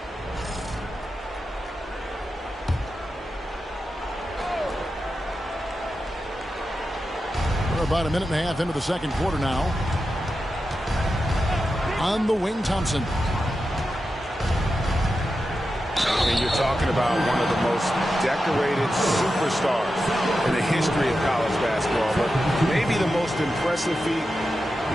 We're about a minute and a half into the second quarter now. On the wing, Thompson. And you're talking about one of the most decorated superstars in the history of college basketball, but maybe the most impressive feat.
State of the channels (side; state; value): both; normal; correlation 0.90